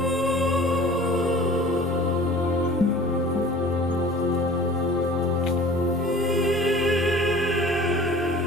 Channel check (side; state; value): right; noise; rumble, 20 dB below the sound